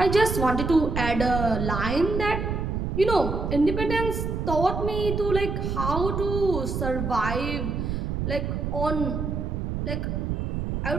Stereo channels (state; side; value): noise; right; rumble, 2 dB below the sound